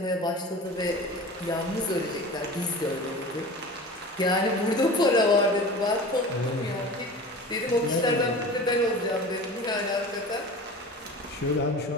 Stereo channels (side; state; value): both; normal; correlation 0.36